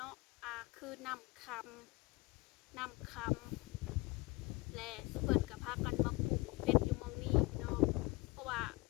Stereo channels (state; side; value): quieter; right; 23.0 dB